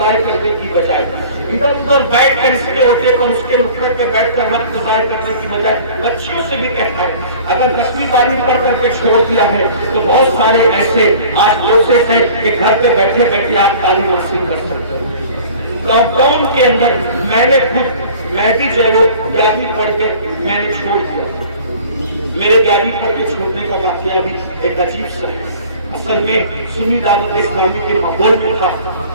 کرنے کی بجائے ادھر ادھر بیٹھ کر اس کے ہوتے پر اس کے نکڑ پہ بیٹھ کر وقت ضائع کرنے کی بجائے بچیوں سے بھی کہتا ہوں اگر 10ویں 12ویں پڑھ کر کے چھوڑ دیا ہے تو بہت سارے ایسے آج کورسز ہیں کہ گھر پہ بیٹھے بیٹھے آپ تعلیم حاصل کر سکتے ہیں۔ لاک ڈاؤن کے اندر میں نے میں بھی جو ہے وہ 11ویں پڑھ کے میں نے چھوڑ دیا، میرے 11ویں پڑھ کے چھوڑنے کا واقعہ بھی ایک عجیب سا ہے۔ اصل میں سنی دعوت اسلامی کے ماحول میں تھا،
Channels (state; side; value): inverted; both; correlation -0.46